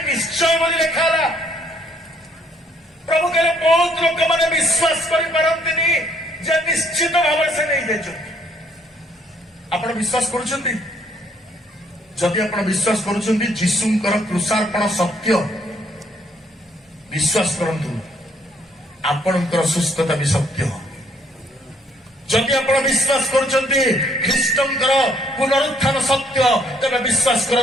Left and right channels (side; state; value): both; normal; correlation 0.66